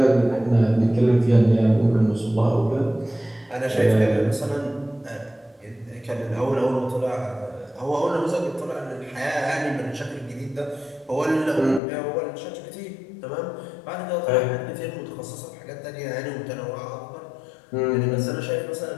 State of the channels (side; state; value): right; drops out; at 11.8 s